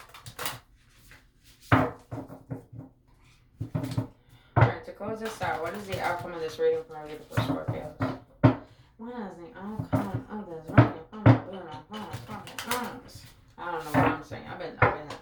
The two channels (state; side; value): identical; both; correlation 1.00